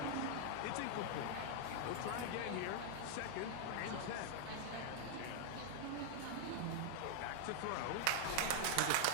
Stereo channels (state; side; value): different; both; correlation 0.00